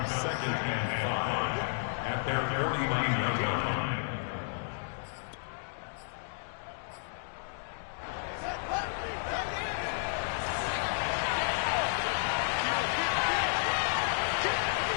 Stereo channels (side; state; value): right; silent; digital silence